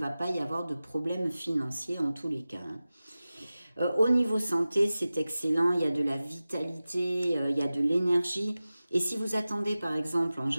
pas y avoir de problème financier en tous les cas, hein. Au niveau santé, c'est excellent, il y a de la vitalité, il y a de l'énergie. Et si vous attendez par exemple en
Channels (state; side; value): inverted; both; correlation -0.96